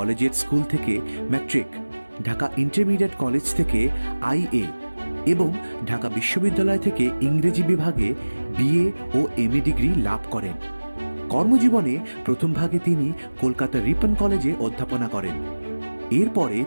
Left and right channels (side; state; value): both; inverted; correlation -1.00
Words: স্কুল থেকে ম্যাট্রিক, ঢাকা ইন্টারমিডিয়েট কলেজ থেকে আইএ এবং ঢাকা বিশ্ববিদ্যালয় থেকে ইংরেজি বিভাগে বিএ ও এমএ ডিগ্রি লাভ করেন। কর্মজীবনে প্রথম ভাগে তিনি কলকাতা রিপন কলেজে অধ্যাপনা করেন। এরপরে